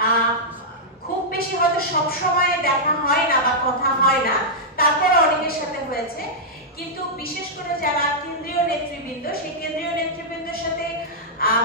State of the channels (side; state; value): both; normal; correlation -0.09